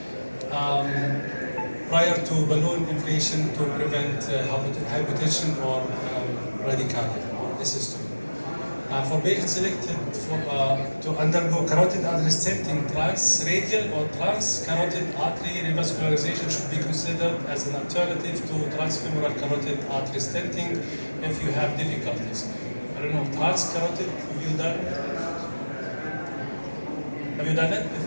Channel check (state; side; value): inverted; both; correlation -1.00